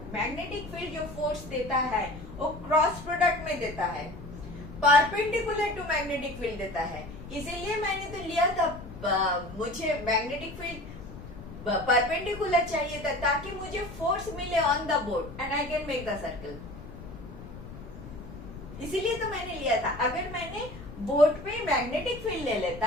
मैग्नेटिक फील्ड जो फोर्स देता है वो क्रॉस प्रोडक्ट में देता है, परपेंडिकुलर टू मैग्नेटिक फील्ड देता है. इसीलिए मैंने तो लिया था, मुझे मैग्नेटिक फील्ड परपेंडिकुलर चाहिए था ताकि मुझे फोर्स मिले on the board and I can make the circle. इसीलिए तो मैंने लिया था. अगर मैंने बोर्ड पे मैग्नेटिक फील्ड ले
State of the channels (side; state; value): left; noise; rumble, 13 dB below the sound